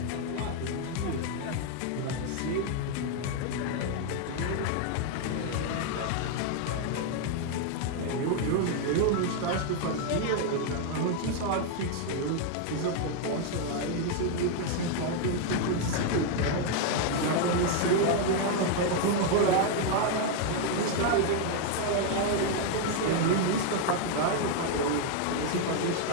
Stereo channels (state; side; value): different; both; correlation 0.00